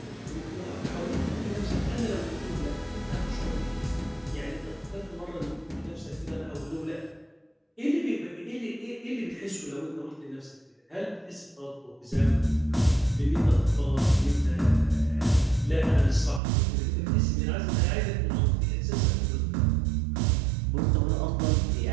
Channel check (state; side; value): drops out; left; at 16.4 s